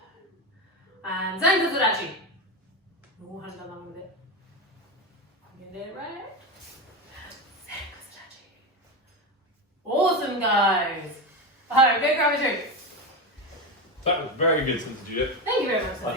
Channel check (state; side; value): normal; both; correlation 0.17